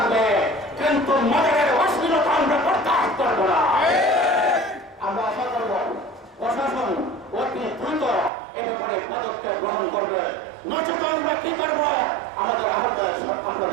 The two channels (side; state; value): left; drops out; at 8.3 s